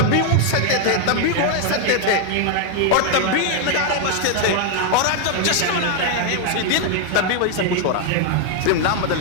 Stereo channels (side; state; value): both; different; correlation 0.00